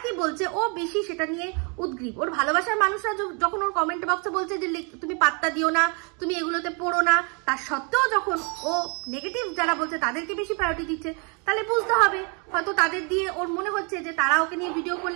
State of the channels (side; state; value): left; quieter; 35.0 dB